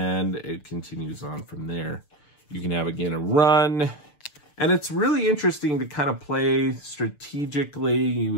it continues on from there. You can have, again, a run, and it's really interesting to kind of play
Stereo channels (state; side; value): late; right; 6.8 ms